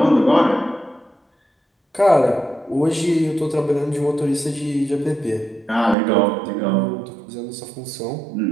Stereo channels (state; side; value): drops out; left; at 6.0 s